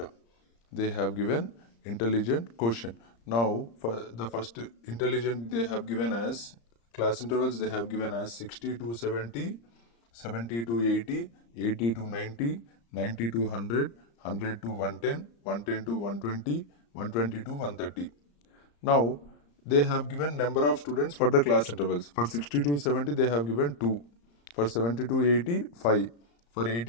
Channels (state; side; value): late; right; 35 ms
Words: They have given intelligent quotient. Now, for the first intelligent, they have given as class intervals, they have given as 60 to 70, 70 to 80, 80 to 90, 90 to 100, 100 to 110, 110 to 120, 120 to 130. Now, they have given number of students for the class intervals. For 60 to 70, they have given 2. For 70 to 80, 5. For